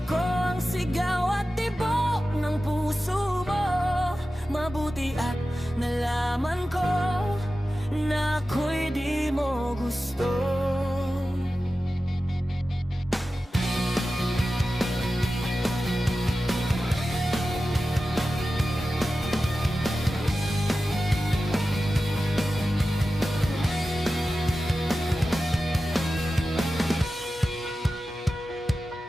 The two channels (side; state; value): both; normal; correlation 0.94